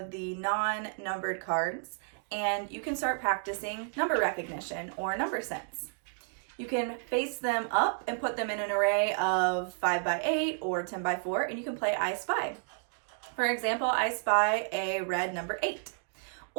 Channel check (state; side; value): silent; left; digital silence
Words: the non-numbered cards and you can start practicing number recognition or number sense. You can face them up and put them in an array of 5 by 8 or 10 by 4, and you can play I Spy. For example, I spy a red number 8.